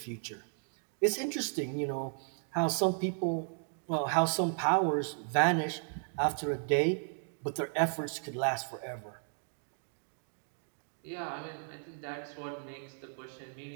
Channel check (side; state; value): left; silent; 55 dB below the other